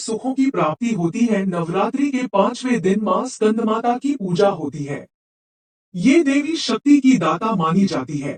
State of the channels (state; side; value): identical; both; correlation 1.00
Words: की प्राप्ति होती है। नवरात्रि के पांचवें दिन मां स्कंद माता की पूजा होती है। ये देवी शक्ति की दाता मानी जाती